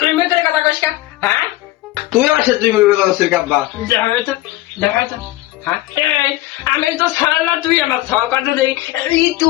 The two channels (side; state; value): right; quieter; 17.3 dB